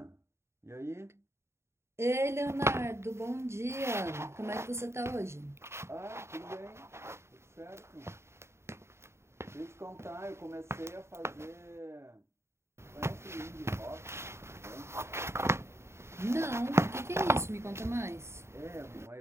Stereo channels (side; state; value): left; late; 0.13 ms